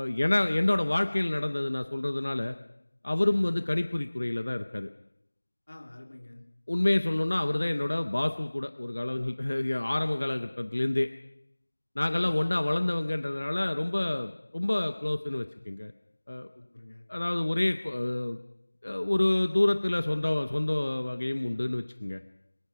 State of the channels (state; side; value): inverted; both; correlation -1.00